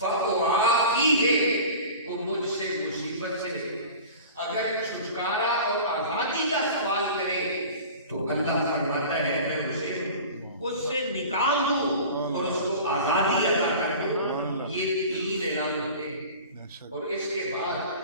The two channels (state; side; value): inverted; both; correlation -0.38